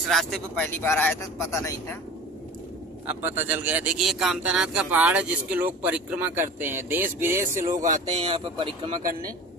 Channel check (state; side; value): normal; both; correlation 0.38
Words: रास्ते पे पहली बार आया था, तो पता नहीं था। अब पता चल गया। देखिए, ये कामतानाथ का पहाड़ है जिसके लोग परिक्रमा करते हैं। देश विदेश से लोग आते हैं यहाँ पे परिक्रमा करने।